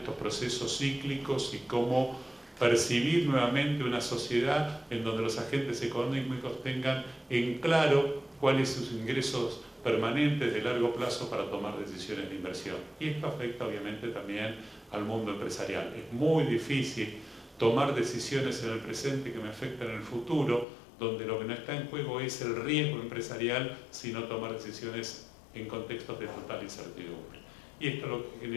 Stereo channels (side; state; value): right; drops out; at 20.7 s